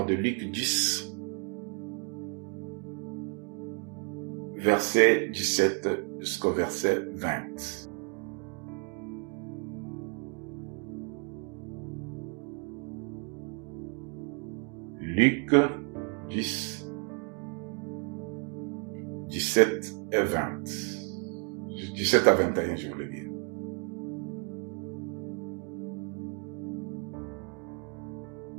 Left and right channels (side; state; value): left; quieter; 37.8 dB